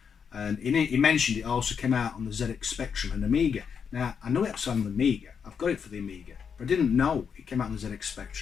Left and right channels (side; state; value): right; quieter; 6.8 dB